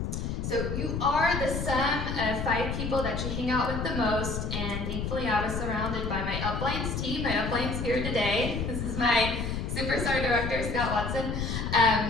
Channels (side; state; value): left; noise; rumble, 3 dB below the sound